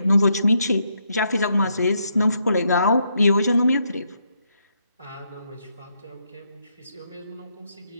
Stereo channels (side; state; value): both; inverted; correlation -0.77